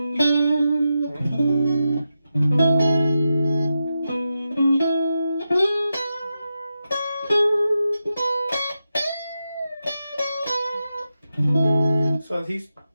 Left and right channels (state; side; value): inverted; both; correlation -0.89